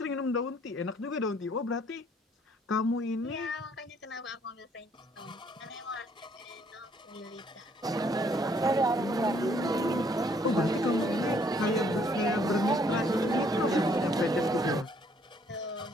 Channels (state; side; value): normal; both; correlation 0.65